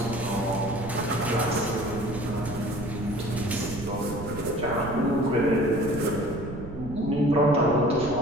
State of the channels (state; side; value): noise; right; rumble, 10 dB below the sound